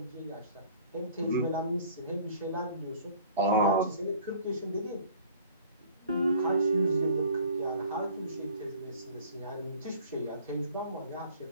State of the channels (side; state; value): both; inverted; correlation -0.50